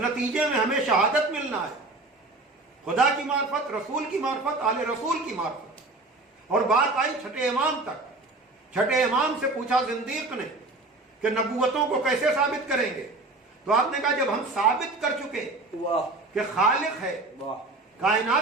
میں ہمیں شہادت ملنا ہے، خدا کی معرفت، رسول کی معرفت، آل رسول کی معرفت۔ اور بات آئی چھٹے امام تک، چھٹے امام سے پوچھا زندیق نے کہ نبوتوں کو کیسے ثابت کریں گے؟ تو آپ نے کہا جب ہم ثابت کر چکے واہ کہ خالق ہے، واہ،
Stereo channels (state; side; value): quieter; left; 3.2 dB